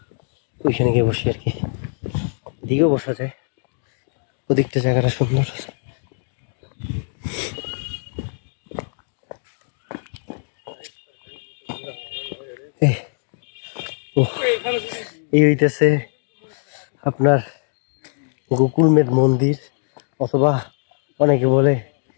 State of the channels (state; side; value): silent; right; 64 dB below the other